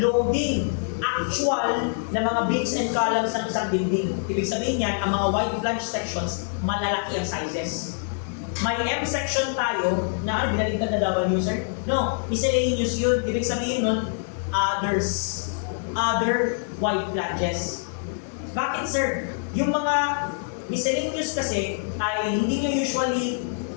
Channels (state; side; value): silent; right; 60 dB below the other